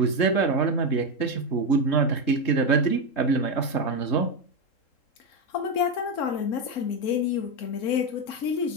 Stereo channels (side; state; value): right; late; 3.7 ms